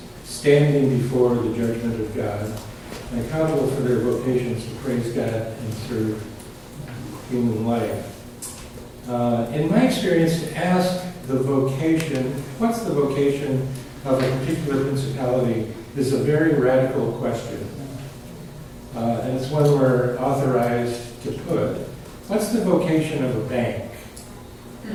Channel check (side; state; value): both; identical; correlation 1.00